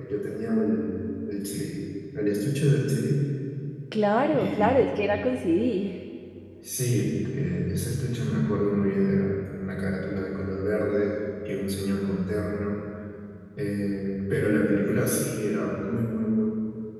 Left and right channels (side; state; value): both; identical; correlation 1.00